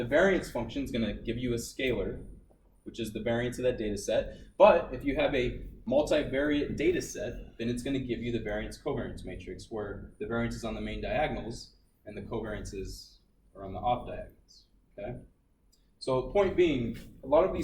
variance function is going to give you a scalar, which is the variance of that data set. But if you have a multivariate data set, then it's going to give you the variance covariance matrix, where the variance is on the main diagonals and the covariances are on the off diagonals. Okay? So point being, a lot of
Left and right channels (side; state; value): both; identical; correlation 1.00